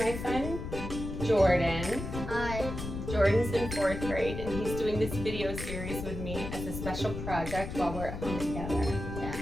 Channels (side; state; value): left; noise; rumble, 6 dB below the sound